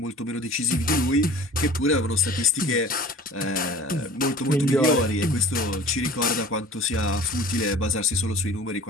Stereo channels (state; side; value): normal; both; correlation 0.43